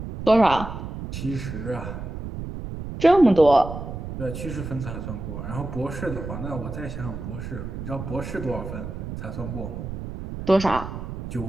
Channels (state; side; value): noise; right; rumble, 7 dB below the sound